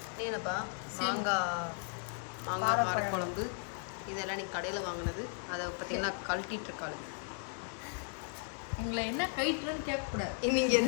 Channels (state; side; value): silent; right; 54 dB below the other